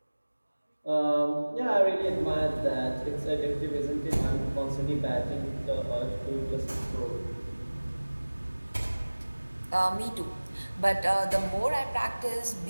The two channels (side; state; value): both; inverted; correlation -1.00